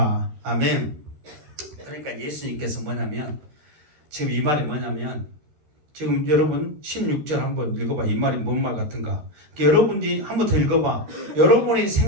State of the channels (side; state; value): left; late; 13 ms